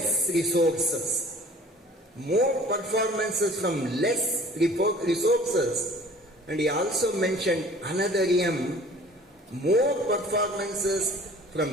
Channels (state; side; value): normal; both; correlation 0.49